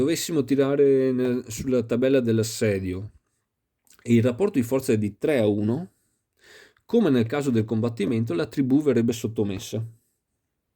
sulla tabella dell'assedio e il rapporto di forza è di 3-1, come nel caso del combattimento, la tribù verrebbe sottomessa.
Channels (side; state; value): both; identical; correlation 1.00